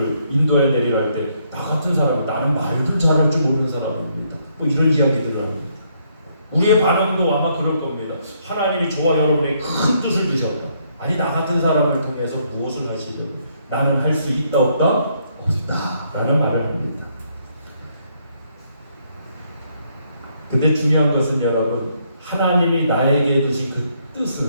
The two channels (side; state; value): both; inverted; correlation -0.72